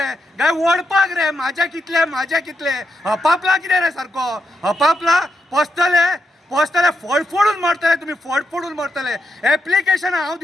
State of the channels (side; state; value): both; normal; correlation 0.83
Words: काय ओडपाक रे. म्हाजे कितले, म्हाजे कितले. हपापला कितें रे सारको, हपापला. पोसतले, पोसतले, फोडून मरतले तुमी, फोडून मरतले. एप्लिकेशन हांव